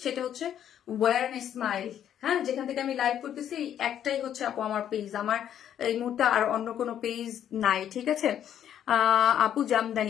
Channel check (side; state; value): right; quieter; 10.1 dB